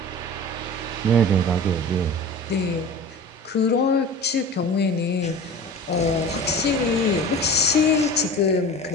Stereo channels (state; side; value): normal; both; correlation 0.37